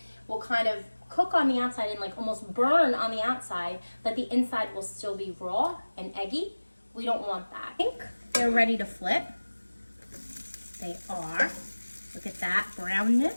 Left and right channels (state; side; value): inverted; both; correlation -1.00